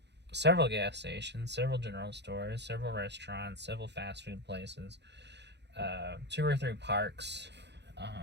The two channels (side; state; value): left; late; 0.50 ms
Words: several gas stations, several general stores, several restaurants, several fast food places, 2 or 3 parks.